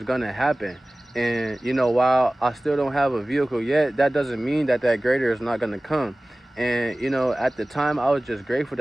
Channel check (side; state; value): both; normal; correlation 0.98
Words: gonna happen. And you know, while I still don't have a vehicle yet, that doesn't mean that that greater is not gonna come. And you know, at the time, I was just grateful